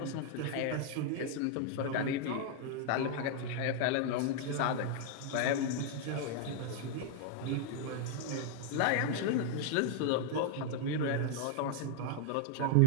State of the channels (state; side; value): different; both; correlation 0.00